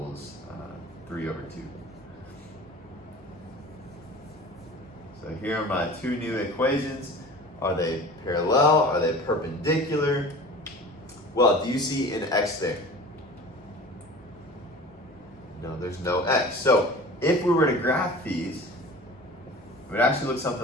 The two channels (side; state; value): both; normal; correlation 0.39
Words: 3 over 2. So here are my 2 new equations. Are they parallel? Are they perpendicular? Well, do you see an x there? No, there's no x. So if we were to graph these, it would actually look